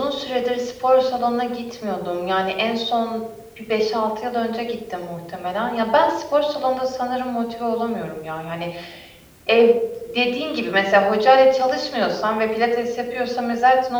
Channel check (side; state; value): both; identical; correlation 1.00